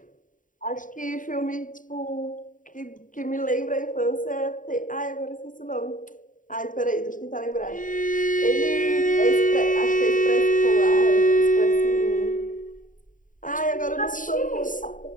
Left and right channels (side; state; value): right; late; 0.38 ms